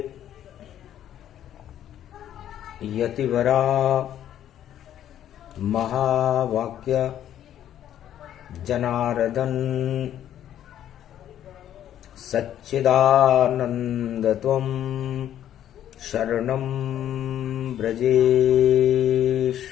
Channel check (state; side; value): quieter; right; 11.1 dB